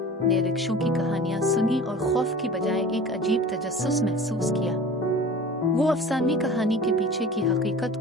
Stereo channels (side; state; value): both; normal; correlation 0.40